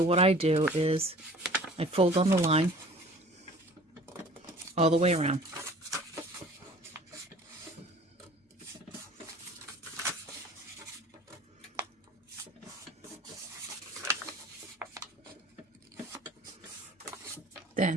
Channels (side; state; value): both; normal; correlation 0.48